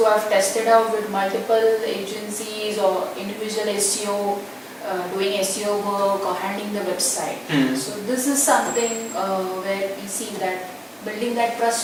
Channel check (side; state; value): both; identical; correlation 1.00